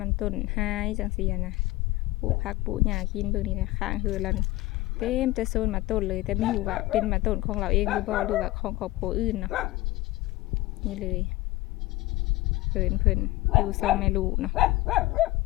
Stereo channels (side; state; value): right; quieter; 18.8 dB